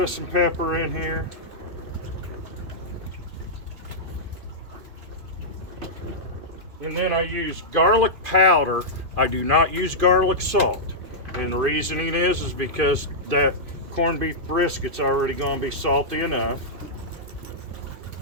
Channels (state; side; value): late; left; 2.5 ms